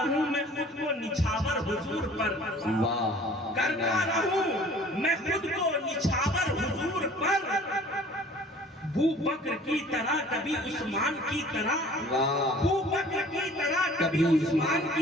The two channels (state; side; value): normal; both; correlation 0.49